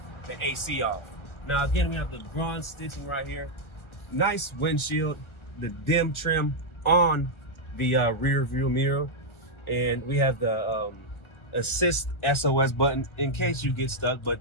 AC off. Now again, we have the bronze stitching right here. Nice windshield, the dim trim on the rear view mirror, and we have the assist SOS button in case you get stuck. But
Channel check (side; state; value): right; late; 1.3 ms